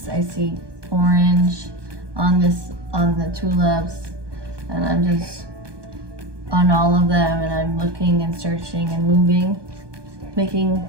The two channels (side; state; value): left; late; 1.2 ms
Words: I see orange on the tulips, and I'm just on all of them, and I'm looking and searching and moving,